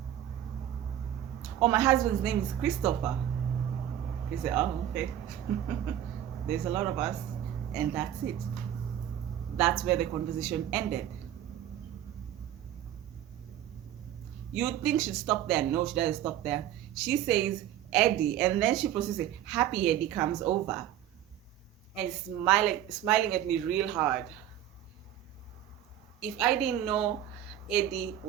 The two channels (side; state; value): left; quieter; 11.4 dB